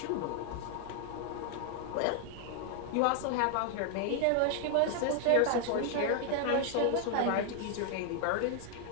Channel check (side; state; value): both; different; correlation 0.00